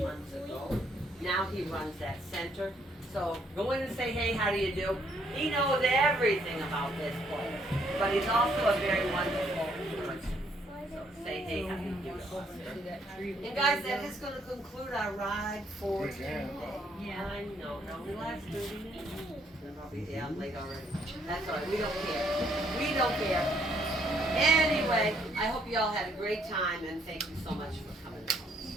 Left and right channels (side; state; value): both; normal; correlation 0.69